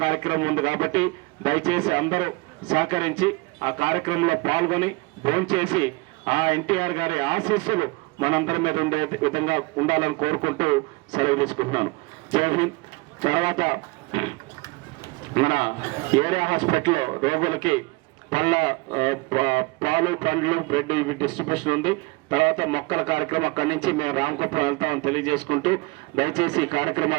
కార్యక్రమం ఉంది కాబట్టి దయచేసి అందరూ సహకరించి ఆ కార్యక్రమంలో పాల్గొని భోంచేసి ఆ ఎన్టీఆర్ గారి ఆశీస్సులు మనందరి మీద ఉండే విధంగా ఉండాలని కోరుకుంటూ సెలవు తీసుకుంటున్నాను. జై హింద్. తర్వాత మన ఏరియా హాస్పిటల్లో రోగులకి పాలు, పండ్లు, బ్రెడ్ ఇవి డిస్ట్రిబ్యూషన్ ఉంది. తర్వాత మొక్కల కార్యక్రమం అక్కడి నుంచి మేము రామకుప్పం వెళ్తామని తెలియజేసుకుంటూ దయచేసి ఈ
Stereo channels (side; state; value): left; quieter; 25.6 dB